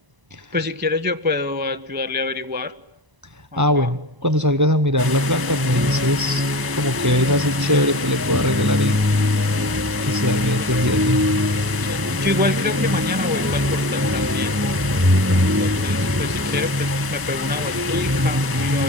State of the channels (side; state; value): left; late; 1.0 ms